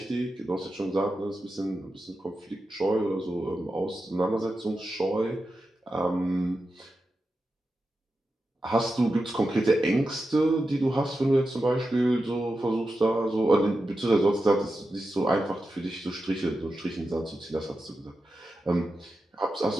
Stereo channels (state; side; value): normal; both; correlation 0.90